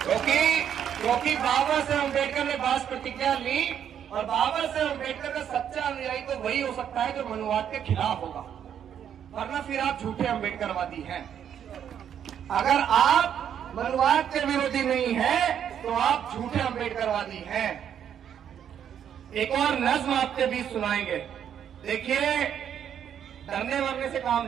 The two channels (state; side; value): quieter; left; 9.1 dB